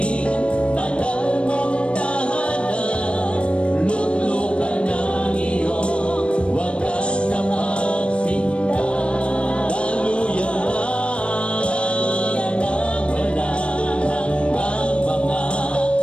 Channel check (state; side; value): late; right; 0.059 ms